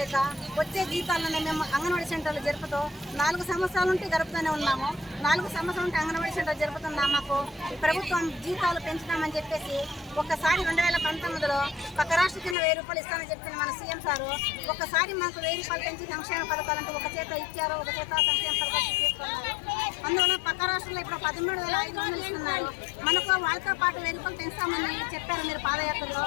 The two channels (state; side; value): drops out; right; at 12.6 s